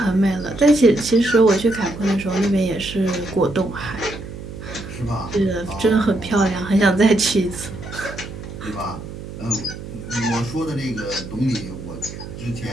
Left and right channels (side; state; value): right; noise; hum, 11 dB below the sound